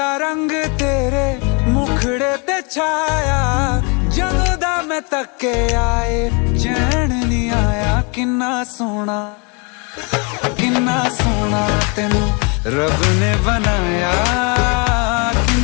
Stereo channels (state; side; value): quieter; right; 33.2 dB